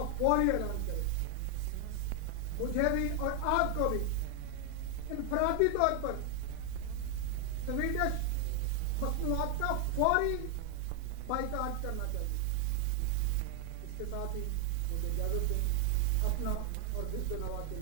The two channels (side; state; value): both; different; correlation 0.00